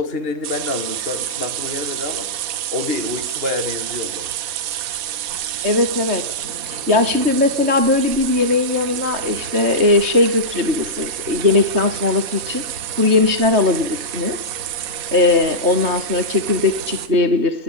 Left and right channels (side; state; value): left; late; 4.1 ms